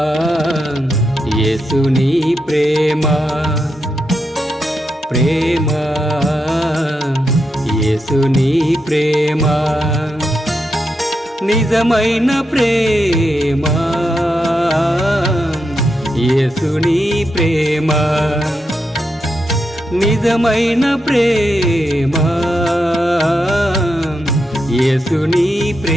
యేసుని ప్రేమ, ప్రేమ, యేసుని ప్రేమ, నిజమైన ప్రేమ, యేసుని ప్రేమ, నిజమైన ప్రేమ, యేసుని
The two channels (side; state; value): both; normal; correlation 0.85